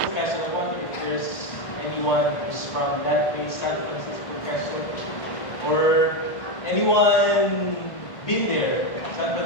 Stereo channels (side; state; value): right; late; 1.5 ms